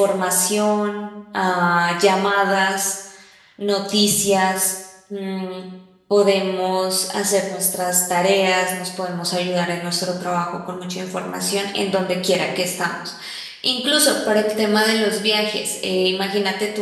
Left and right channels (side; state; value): both; identical; correlation 1.00